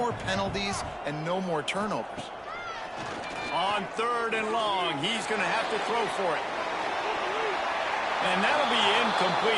penalties and no more turnovers. On third and long, he's going to have to throw for it. And that'll be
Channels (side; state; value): both; identical; correlation 1.00